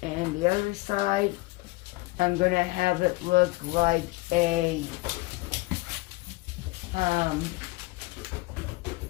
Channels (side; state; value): right; quieter; 22.5 dB